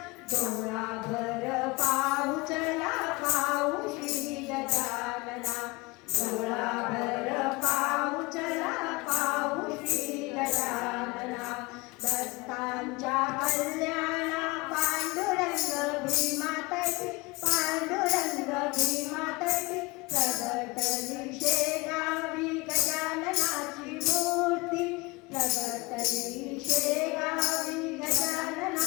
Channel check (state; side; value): quieter; right; 24.4 dB